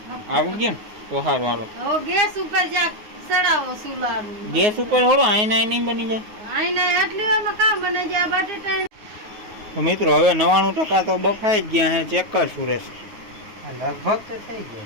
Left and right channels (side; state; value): left; late; 9.5 ms